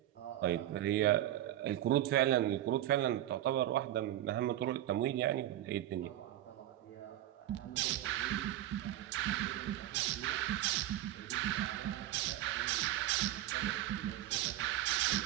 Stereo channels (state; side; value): quieter; left; 13.5 dB